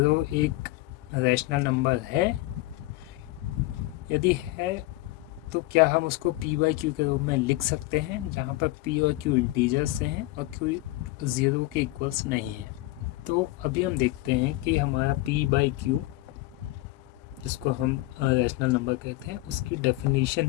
एक रैशनल नंबर है? यदि है तो क्या हम उसको P by Q के रूप में लिख सकते हैं, जहाँ पर P और Q इंटीजर्स हैं और Q 0 के इक्वल्स नहीं है? तो अभी हम देखते हैं कि हमारा P by Q, जिसको हम रैशनल नंबर कहते हैं, उसकी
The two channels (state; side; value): quieter; right; 18.3 dB